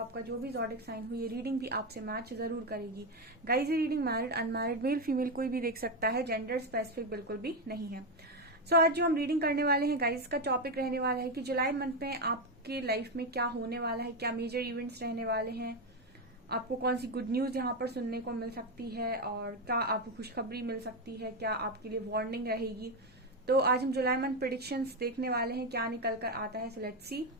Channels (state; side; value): normal; both; correlation 0.09